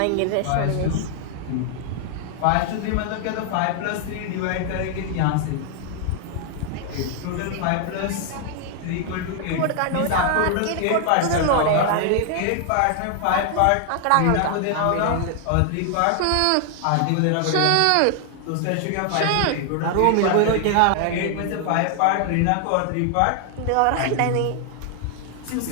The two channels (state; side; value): different; both; correlation 0.00